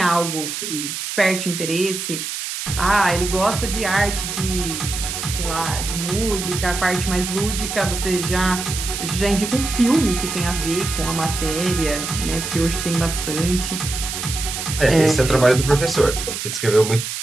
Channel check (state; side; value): noise; right; hiss, 5 dB below the sound